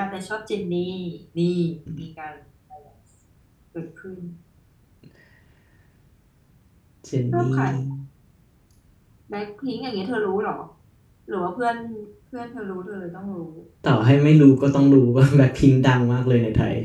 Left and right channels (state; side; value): identical; both; correlation 1.00